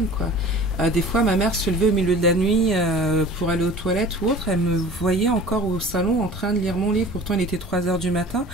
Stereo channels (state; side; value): normal; both; correlation 0.42